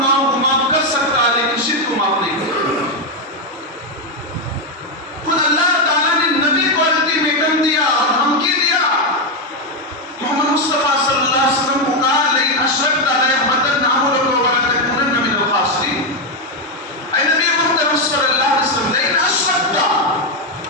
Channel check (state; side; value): normal; both; correlation 0.05